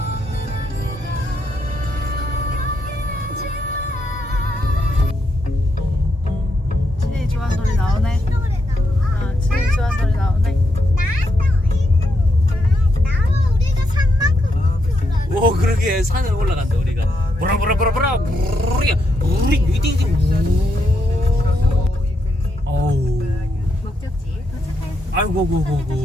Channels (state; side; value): normal; both; correlation 0.80